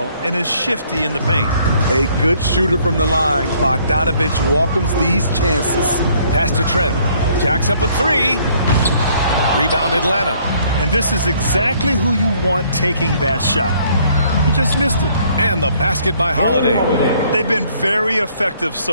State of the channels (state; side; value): inverted; both; correlation -0.63